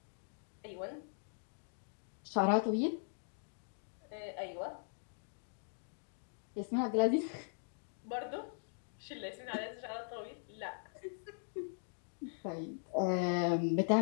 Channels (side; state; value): right; silent; digital silence